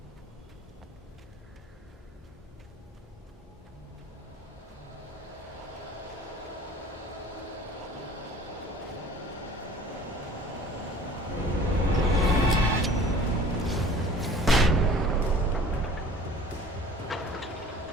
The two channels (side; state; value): both; normal; correlation 0.46